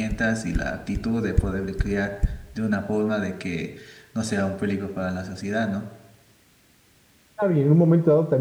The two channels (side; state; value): both; identical; correlation 1.00